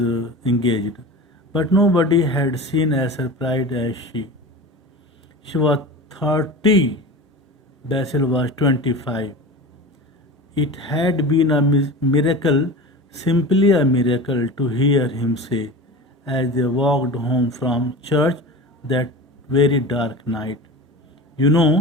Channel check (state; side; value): normal; both; correlation 0.32